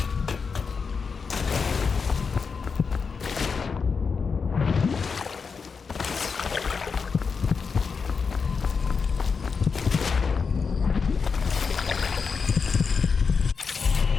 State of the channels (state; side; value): quieter; right; 5.4 dB